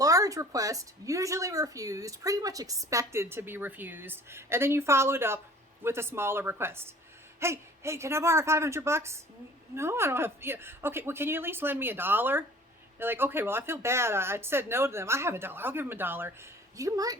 request, usually refused, pretty much expected to be refused. And then you follow it up with a smaller request. Hey, can I borrow $500? No, I don't have, okay, well, can you at least lend me $1? They're like, okay, well, I feel bad. I said no to them. I have $1. I'll give them $1. You might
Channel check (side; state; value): both; normal; correlation 0.49